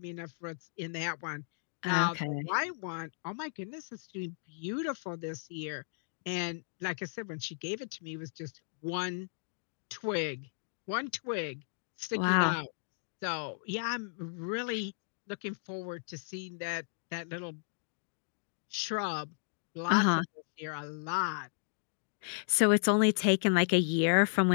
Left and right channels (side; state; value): right; silent; digital silence